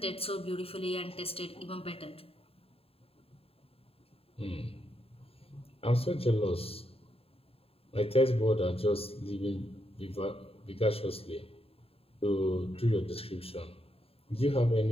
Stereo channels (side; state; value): right; late; 0.28 ms